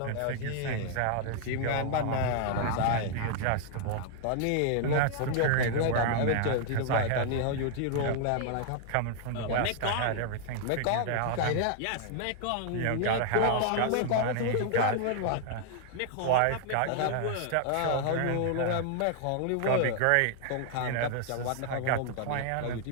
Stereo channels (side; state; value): both; different; correlation -0.01